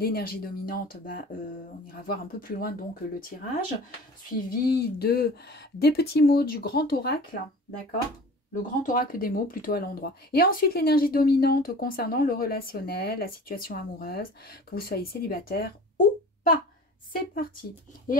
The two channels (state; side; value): normal; both; correlation 0.41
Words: dominante, bah, on ira voir un peu plus loin donc le tirage, suivi des petits mots du grand oracle, d'accord? Le grand oracle des mots plutôt à l'endroit. Et ensuite l'énergie dominante concernant le relationnel, la situation amoureuse, que vous soyez célibataire ou pas. C'est parti.